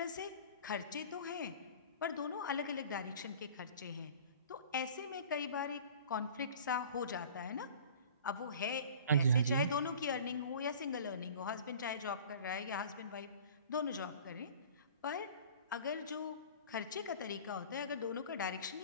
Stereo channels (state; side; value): inverted; both; correlation -0.44